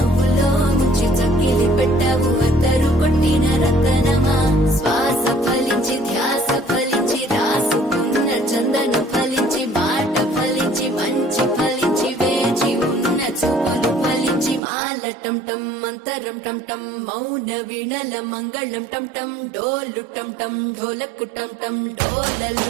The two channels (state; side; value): drops out; left; at 14.6 s